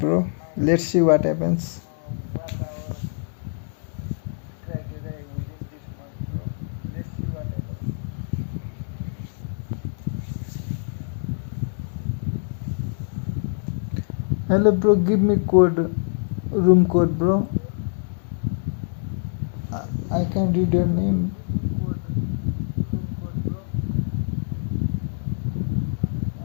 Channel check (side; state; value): right; silent; digital silence